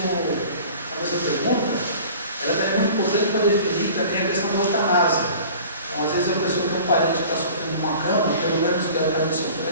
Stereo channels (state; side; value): inverted; both; correlation -0.44